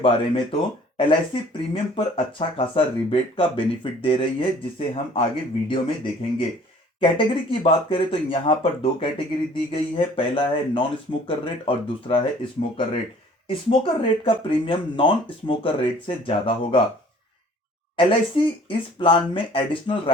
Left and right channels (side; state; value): both; normal; correlation 0.53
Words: में तो LIC प्रीमियम पर अच्छा खासा रिबेट का बेनिफिट दे रही है, जिसे हम आगे वीडियो में देखेंगे। कैटेगरी की बात करें तो यहां पर दो कैटेगरी दी गई है। पहला है नॉन स्मोकर रेट और दूसरा है स्मोकर रेट। स्मोकर रेट का प्रीमियम नॉन स्मोकर रेट से ज्यादा होगा। LIC इस प्लान में एडिशनल